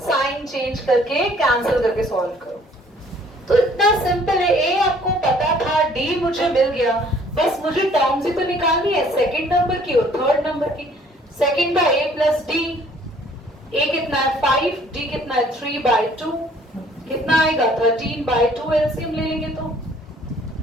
चेंज करके कैंसिल करके सॉल्व करो। तो इतना सिंपल है। a आपको पता था, d मुझे मिल गया, बस मुझे टर्म्स ही तो निकालनी है, सेकंड नंबर की और थर्ड नंबर की। सेकंड का a प्लस डी, a कितना है 5, d कितना है 3/2, कितना आएगा 13/2, एलसीएम ले लेंगे तो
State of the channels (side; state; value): both; normal; correlation 0.58